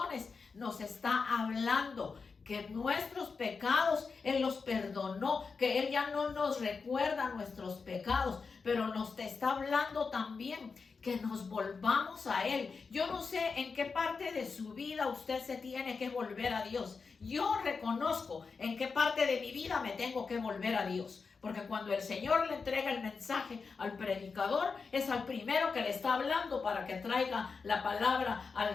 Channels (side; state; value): right; quieter; 4.9 dB